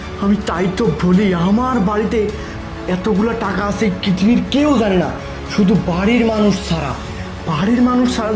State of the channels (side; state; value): both; identical; correlation 1.00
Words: আমি তাই তো বলি, আমার বাড়িতে এতগুলো টাকা আছে পৃথিবীর কেউ জানে না, শুধু বাড়ির মানুষ ছাড়া। বাড়ির মানুষ ছাড়া